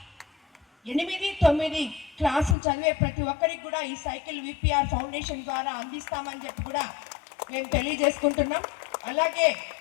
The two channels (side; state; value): right; drops out; at 2.6 s